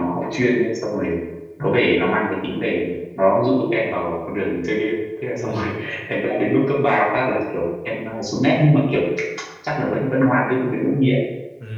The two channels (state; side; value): identical; both; correlation 1.00